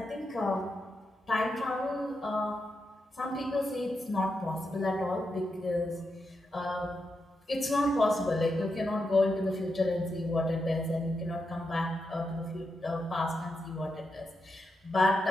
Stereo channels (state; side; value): normal; both; correlation 0.86